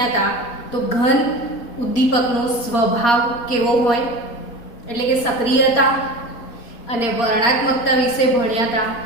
હતા તો ઘન ઉદ્દીપકનો સ્વભાવ કેવો હોય, એટલે કે સક્રિયતા અને વર્ણાત્મકતા વિશે ભણ્યા હતા.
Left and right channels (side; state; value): right; late; 4.3 ms